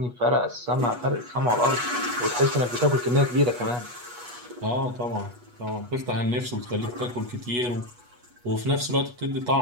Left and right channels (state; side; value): late; left; 8.2 ms